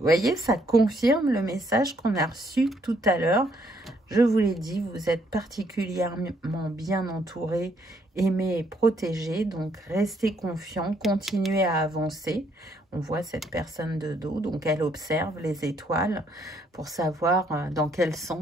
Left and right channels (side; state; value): both; normal; correlation 0.70